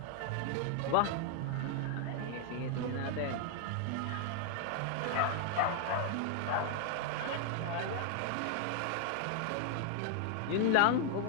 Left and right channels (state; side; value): different; both; correlation 0.00